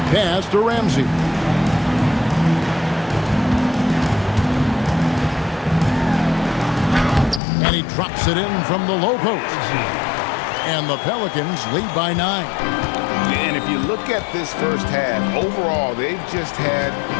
Pass to Ramsey. And he drops it in from the low post. And the Pelicans lead by 9. And if you look at this first half, overall, they've just had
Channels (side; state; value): right; drops out; at 7.4 s